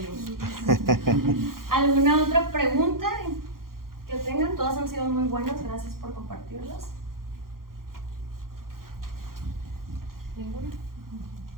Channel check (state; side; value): late; left; 0.92 ms